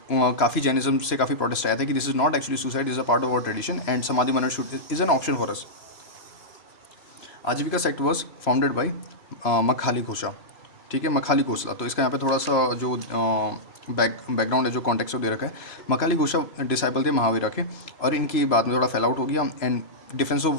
काफ़ी जैनिज्म से काफ़ी प्रोटेस्ट आया था कि this is not actually suicide, is a part of our tradition and samadhi maran should is an option for us. Ajivika sect was founded by Makhali Ghosha. ठीक है, मखाली घोषला. तो इसका यहाँ पे थोड़ा सा जो बैकग्राउंड है, जो कॉन्टेक्स्ट दे रखा है. मखाली घोषा डिसाइपल थे महावीरा के, और इनकी बाद में थोड़ा फैल आउट हो गया एंड डिफेंस ऑफ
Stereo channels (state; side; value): late; right; 3.0 ms